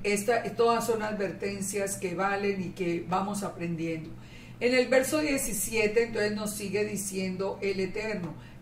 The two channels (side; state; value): both; identical; correlation 1.00